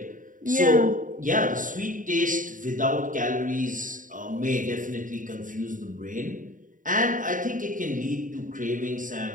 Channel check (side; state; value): left; late; 0.38 ms